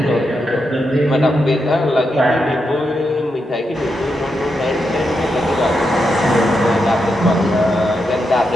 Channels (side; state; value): both; normal; correlation 0.84